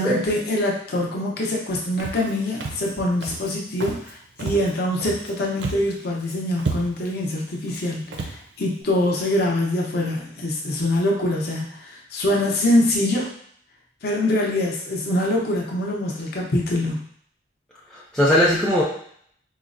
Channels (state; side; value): normal; both; correlation 0.58